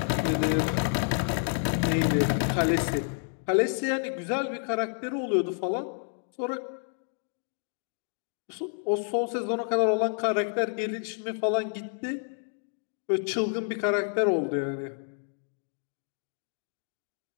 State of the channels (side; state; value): right; silent; 58 dB below the other